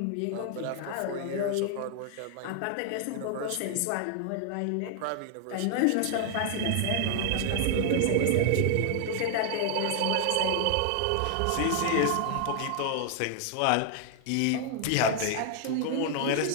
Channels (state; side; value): different; both; correlation 0.00